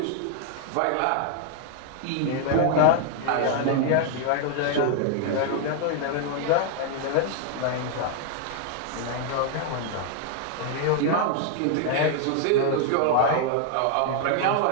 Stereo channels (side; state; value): both; different; correlation 0.00